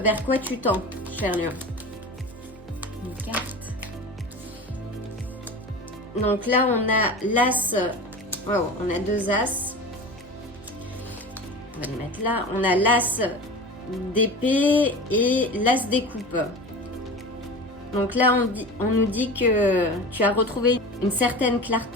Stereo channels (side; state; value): both; normal; correlation 0.33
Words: quoi tu tends, cher Lion. Une carte. Donc là, on a l'as. Wow, on a deux as. On va les mettre là. On a l'as d'épée et l'as des coupes. Donc là, on nous dit que tu as retrouvé une certaine